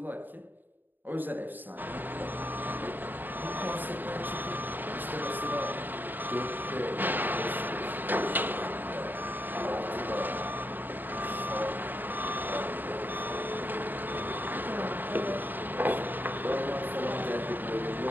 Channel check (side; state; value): left; late; 0.090 ms